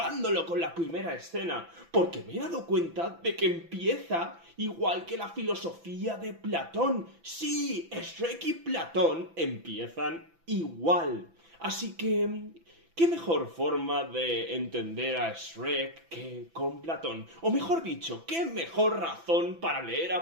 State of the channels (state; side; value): late; left; 6.0 ms